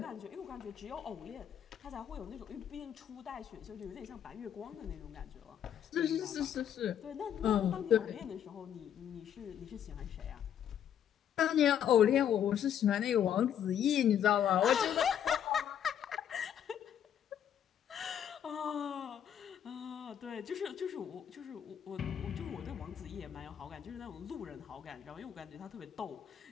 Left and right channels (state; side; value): quieter; right; 9.5 dB